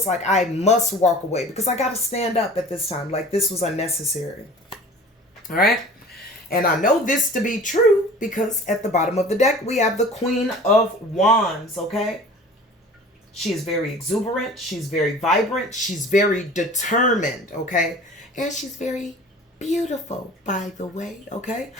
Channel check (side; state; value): both; normal; correlation 0.43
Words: like I must walk away because I got to stand up at this time. Like this was unnecessary. All right. And I know this to be true because at the bottom of the deck, we have the Queen of Wands. Okay. She is very exuberant. She's very vibrant. She's very determined, okay? And she's very beautiful, by the way, okay?